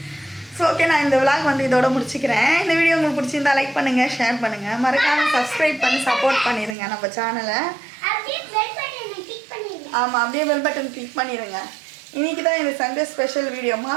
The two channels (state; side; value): drops out; left; at 6.8 s